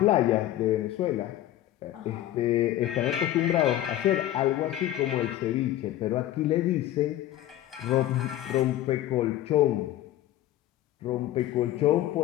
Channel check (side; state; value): right; quieter; 13.5 dB